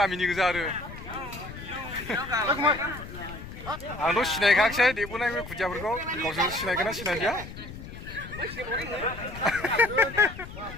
गोजा आरो आंथ' सिनायखायाखिसै देबोनाय बे खुदियाफोरखौ गावसोर सिनायगोन ना सिनायदिया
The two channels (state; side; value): noise; left; rumble, 12 dB below the sound